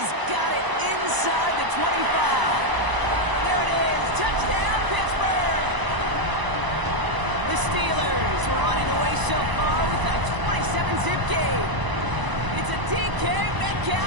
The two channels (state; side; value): late; left; 1.0 ms